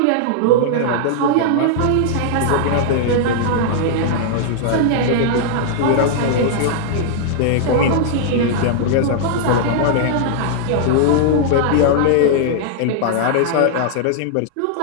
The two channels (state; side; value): different; both; correlation -0.01